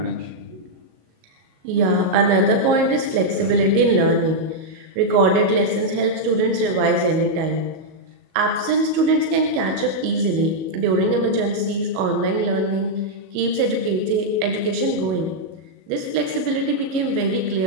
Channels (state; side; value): late; left; 37 ms